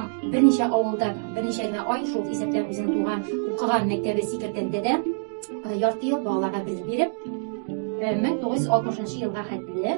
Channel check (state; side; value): silent; left; digital silence